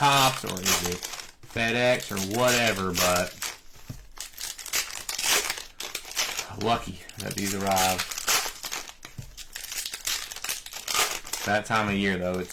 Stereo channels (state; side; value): identical; both; correlation 1.00